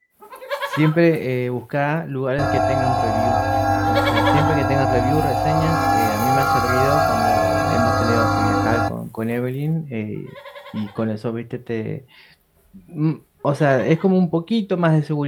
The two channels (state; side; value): identical; both; correlation 1.00